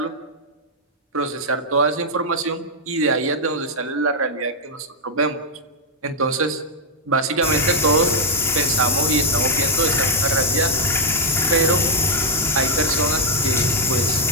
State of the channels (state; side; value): normal; both; correlation -0.04